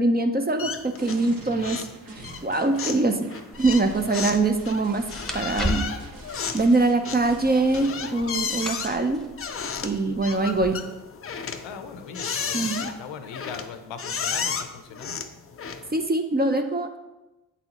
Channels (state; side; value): normal; both; correlation 0.53